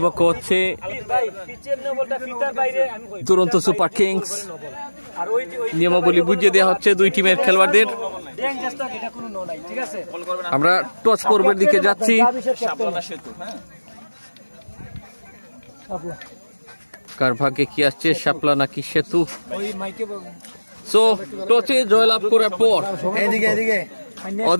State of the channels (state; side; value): inverted; both; correlation -1.00